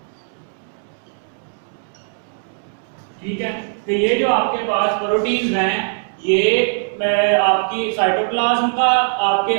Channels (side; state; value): left; silent; digital silence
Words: ठीक है। तो ये जो आपके पास प्रोटीन्स हैं ये आपकी साइटोप्लाज्म का, आपके